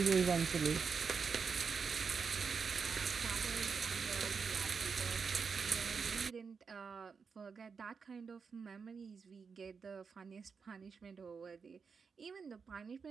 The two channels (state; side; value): quieter; left; 5.6 dB